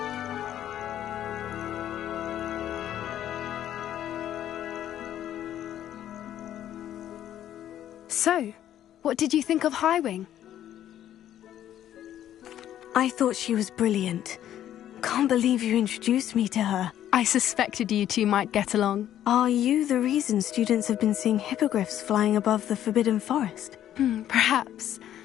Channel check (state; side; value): quieter; right; 11.4 dB